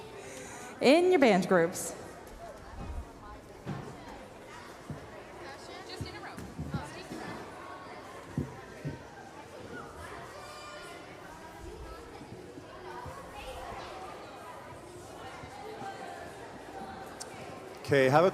In your band groups. Just in a row. Okay, have a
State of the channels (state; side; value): identical; both; correlation 1.00